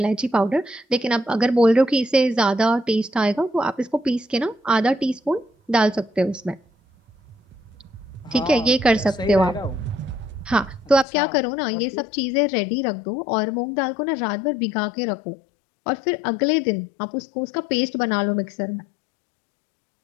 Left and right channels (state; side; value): drops out; right; at 11.1 s